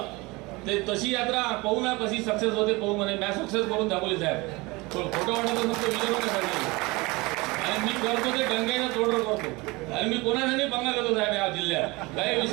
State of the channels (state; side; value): quieter; left; 23.8 dB